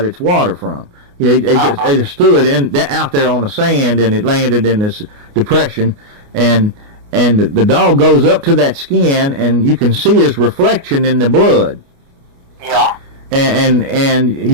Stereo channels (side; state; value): left; late; 29 ms